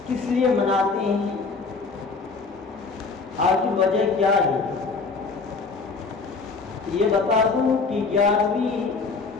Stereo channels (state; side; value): quieter; right; 4.4 dB